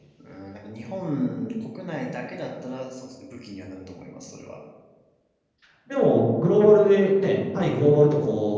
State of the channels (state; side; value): identical; both; correlation 1.00